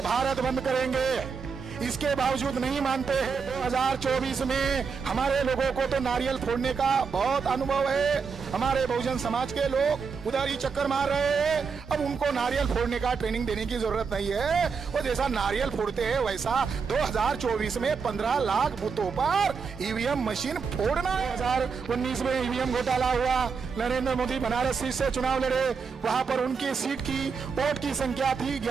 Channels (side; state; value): left; quieter; 5.5 dB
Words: भारत बंद करेंगे। इसके बावजूद नहीं मानते हैं। 2024 में हमारे लोगों को तो नारियल फोड़ने का बहुत अनुभव है। हमारे बहुजन समाज के लोग उधर ही चक्कर मार रहे हैं। अब उनको नारियल फोड़ने का ट्रेनिंग देने की जरूरत नहीं है। वो जैसा नारियल फोड़ते हैं वैसा 2024 में 15 लाख बूथों पर ईवीएम मशीन फोड़ना है। 2019 में ईवीएम घोटाला हुआ, नरेंद्र मोदी बनारस सीट से चुनाव लड़े, वहां पर उनकी सीट की वोट की संख्या थी